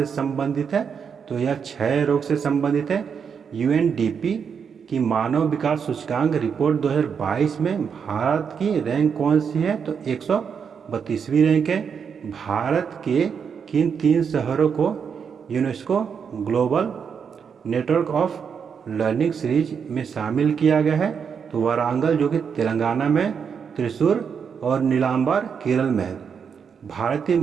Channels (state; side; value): quieter; left; 6.7 dB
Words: संबंधित है? तो यह क्षय रोग से संबंधित है। यूएनडीपी की मानव विकास सूचकांक रिपोर्ट 2022 में भारत की रैंक कौन सी है? तो 132वीं रैंक है। भारत के किन 3 शहरों को UNESCO global network of learning series में शामिल किया गया है? तो वारंगल, जो कि तेलंगाना में, त्रिशूर और नीलांबर केरल में है। भारतीय